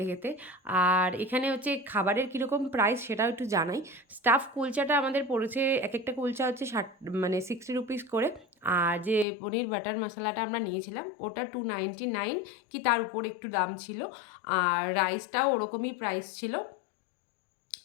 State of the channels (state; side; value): drops out; right; at 9.2 s